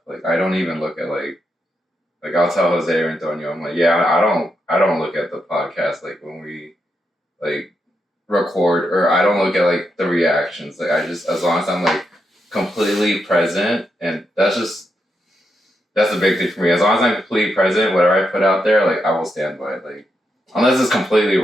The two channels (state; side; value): normal; both; correlation 0.83